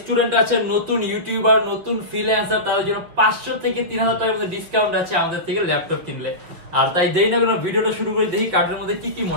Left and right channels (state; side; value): late; left; 6.1 ms